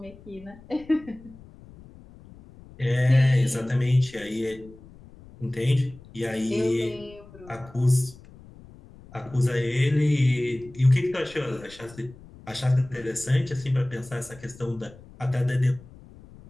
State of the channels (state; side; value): noise; left; rumble, 21 dB below the sound